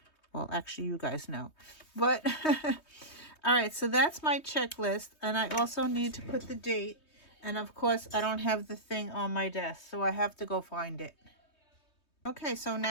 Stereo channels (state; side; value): late; right; 3.2 ms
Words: Well, actually, you guys know. But, all right, so that's my checklist. And I also need to put the date. And of course, I don't have the thing on my desk, so I have to go find it. Okay, so